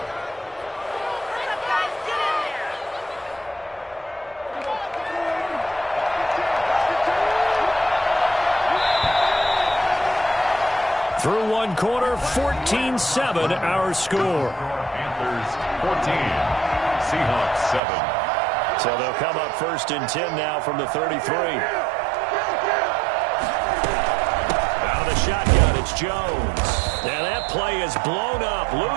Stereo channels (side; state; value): left; drops out; at 17.8 s